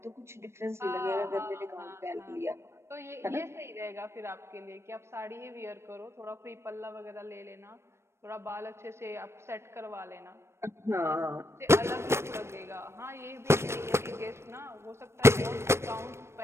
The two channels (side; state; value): left; late; 0.13 ms